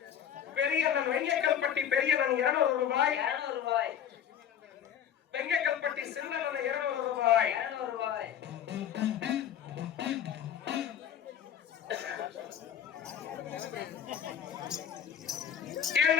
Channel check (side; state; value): right; quieter; 9.3 dB